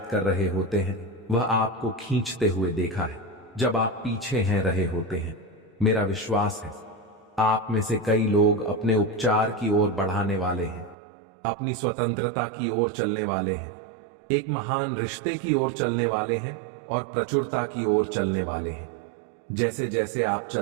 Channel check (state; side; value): drops out; left; at 11.0 s